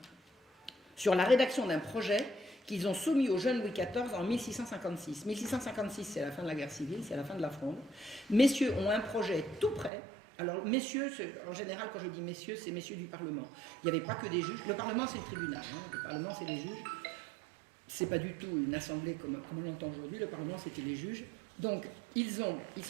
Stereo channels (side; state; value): left; drops out; at 9.9 s